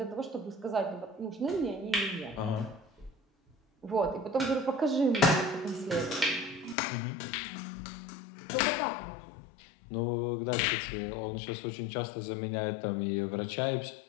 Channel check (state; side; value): drops out; right; at 6.8 s